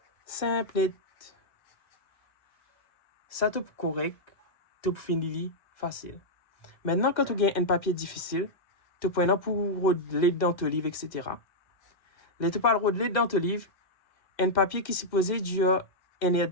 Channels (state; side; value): late; right; 2.1 ms